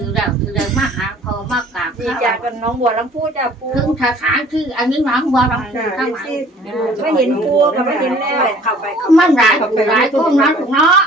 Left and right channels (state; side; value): normal; both; correlation 0.53